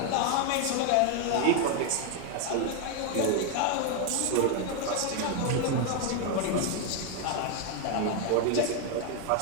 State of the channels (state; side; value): different; both; correlation 0.01